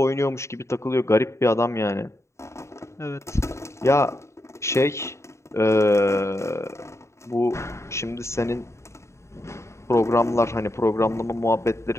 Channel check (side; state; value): right; late; 0.14 ms